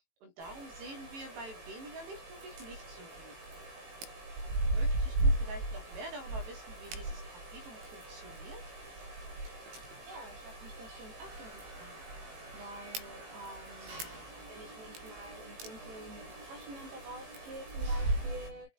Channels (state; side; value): late; left; 18 ms